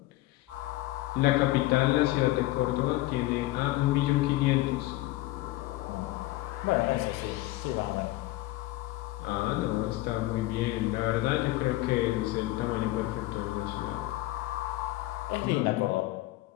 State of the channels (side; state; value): right; quieter; 17.6 dB